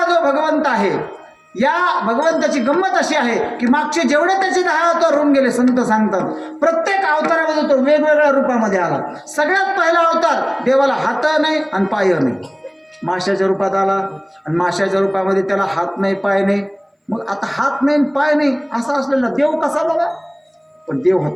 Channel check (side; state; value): both; identical; correlation 1.00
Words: जो भगवंत आहे, या भगवंताची गंमत अशी आहे की मागचे जेवढे त्याचे 10 अवतार होऊन गेले संत सांगतात, प्रत्येक अवतारामध्ये तो वेगवेगळ्या रूपामध्ये आला. सगळ्यात पहिला अवतार देवाला हात नाही आणि पाय नाही. माशाच्या रूपात आला आणि माशाच्या रूपामध्ये त्याला हात नाही पाय नाही. मग आता हात नाही पाय नाही असा असलेला देव कसा बघा? पण देव